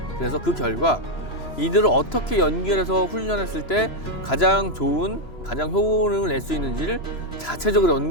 그래서 그 결과 이들을 어떻게 연결해서 훈련했을 때 가장 좋은, 가장 효능을 낼 수 있는지를 자체적으로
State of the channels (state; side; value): late; right; 3.0 ms